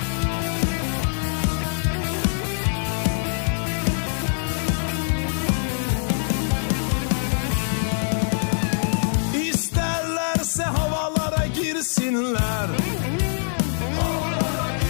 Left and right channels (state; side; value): silent; right; digital silence